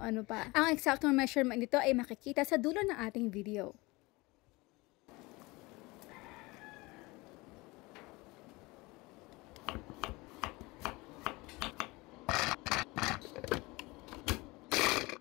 pa. Ang exact measurement nito ay makikita sa dulo ng ating video.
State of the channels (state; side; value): quieter; right; 23.3 dB